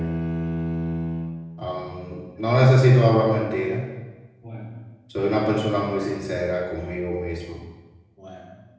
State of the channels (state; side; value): identical; both; correlation 1.00